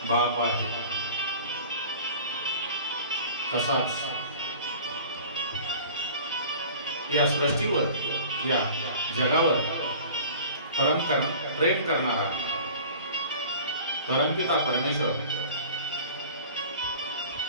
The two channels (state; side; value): inverted; both; correlation -0.43